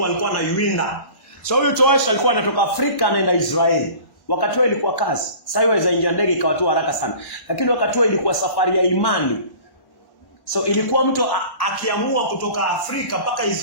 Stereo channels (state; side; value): late; right; 1.1 ms